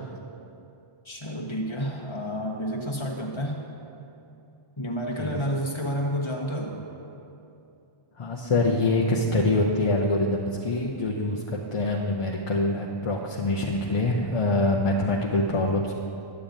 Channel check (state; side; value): late; right; 1.3 ms